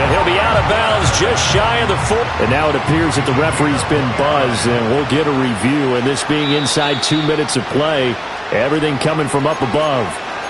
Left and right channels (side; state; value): both; identical; correlation 1.00